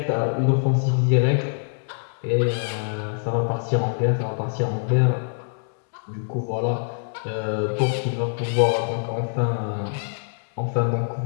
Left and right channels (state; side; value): silent; right; digital silence